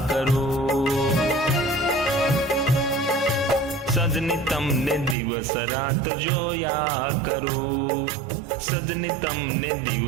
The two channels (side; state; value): left; drops out; at 5.2 s